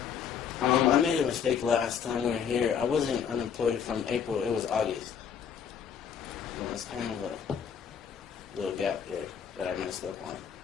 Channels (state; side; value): quieter; right; 7.6 dB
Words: I made a mistake last time we were here. I wasn't unemployed from April. It was August. So that's kind of a little gap there that I messed up on.